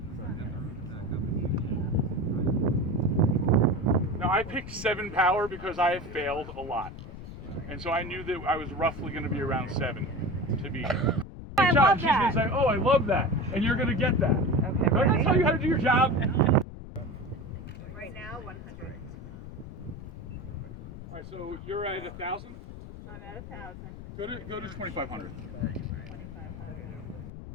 Now I picked 7 power because I have failed a lot. And so I knew that I was roughly going to be around 7 to be. I love She's that. going to say, oh, I love that. And you're going to get that. Okay, Don't I tell you how to do your job? Right now, 100. All right, so you're at 1,000? I'm at 1,000. Go to 2,500. 2,500.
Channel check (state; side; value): noise; left; rumble, 12 dB below the sound